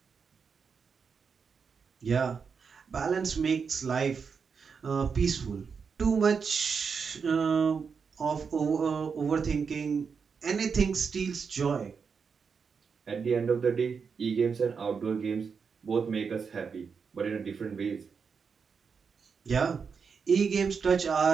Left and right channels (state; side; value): quieter; left; 5.8 dB